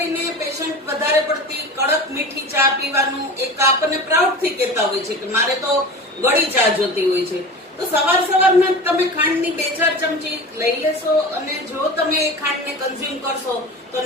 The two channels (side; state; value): both; normal; correlation 0.33